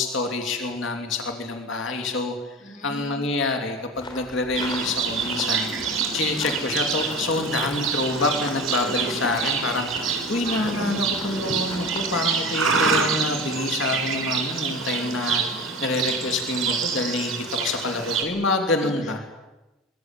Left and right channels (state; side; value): normal; both; correlation 0.31